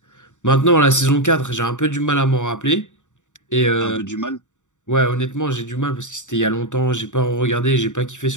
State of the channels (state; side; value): late; right; 0.85 ms